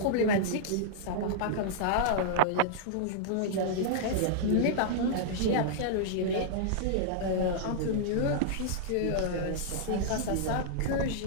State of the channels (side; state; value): both; different; correlation -0.02